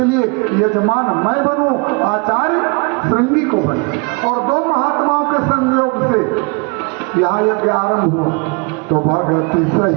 लिए यजमान मैं बनूं, आचार्य श्रृंगी को बने। और 2 महात्माओं के संयोग से यहाँ यज्ञ आरंभ हुआ। तो भगति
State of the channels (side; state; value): left; quieter; 31.7 dB